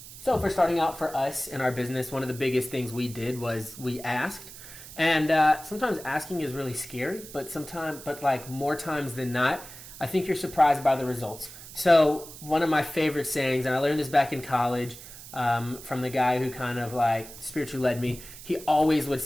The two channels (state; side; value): noise; right; hiss, 15 dB below the sound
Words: for starting out for us in our business, one of the biggest things we did was we asked. And sometimes asking is really scary, but more times than not, I think you're surprised by the results. So one of my favorite sayings, and I learned this back in college, from the guy who kind of spiritually led me, he always would